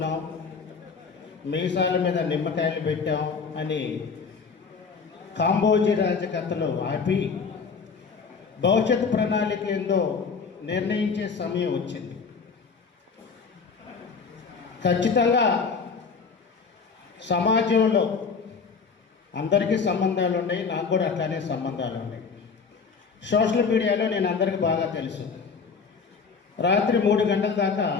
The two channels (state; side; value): quieter; right; 5.3 dB